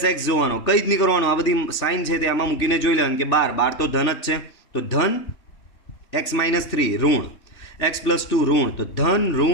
જોવાનો, કંઈ જ નહીં કરવાનું, આ બધી સાઇન છે તે આમાં મૂકીને જોઈ લેવાનું કે 12 તો ધન જ છે, તો ધન x-3 ઋણ, x+2 ઋણ, તો ધન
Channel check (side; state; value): right; late; 3.4 ms